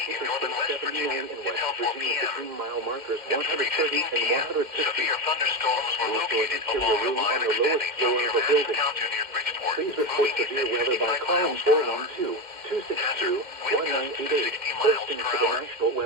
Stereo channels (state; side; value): late; left; 2.1 ms